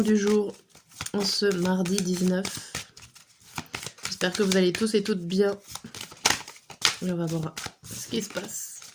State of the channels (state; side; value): identical; both; correlation 1.00